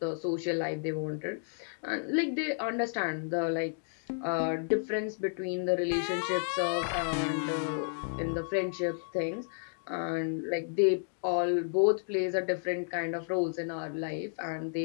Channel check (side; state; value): right; silent; digital silence